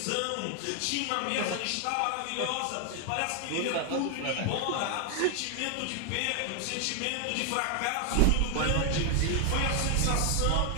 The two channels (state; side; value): different; both; correlation 0.00